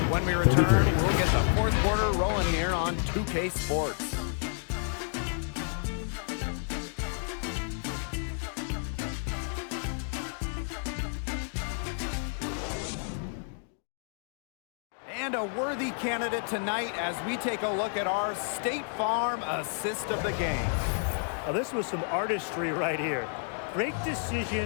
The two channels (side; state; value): right; silent; 56 dB below the other